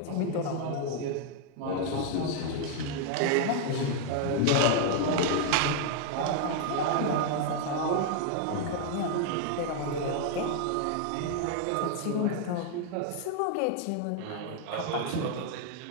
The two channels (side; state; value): both; different; correlation 0.00